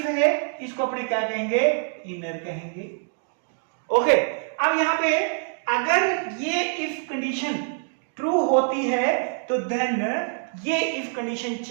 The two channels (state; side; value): silent; left; 62 dB below the other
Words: है इसको अपने क्या कहेंगे, इनर कहेंगे। ओके, अब यहां पे अगर ये इफ कंडीशन ट्रू होती है तो देन ये इफ कंडीशन